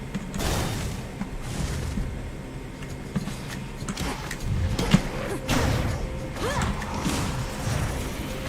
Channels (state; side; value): identical; both; correlation 1.00